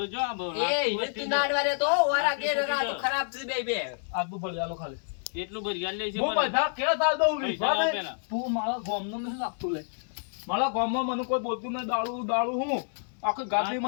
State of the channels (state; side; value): silent; right; 59 dB below the other